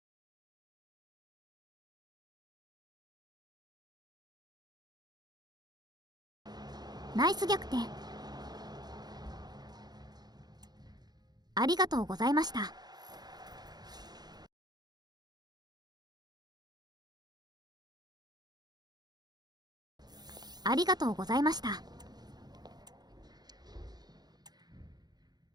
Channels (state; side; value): late; left; 0.20 ms